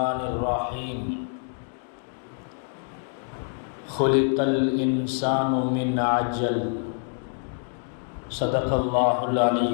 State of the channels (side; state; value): right; silent; 61 dB below the other